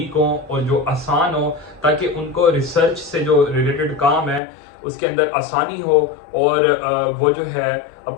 हो और जो आसान हो, ताकि उनको रिसर्च से जो रिलेटेड काम है उसके अंदर आसानी हो और वो जो है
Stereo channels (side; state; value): right; drops out; at 4.4 s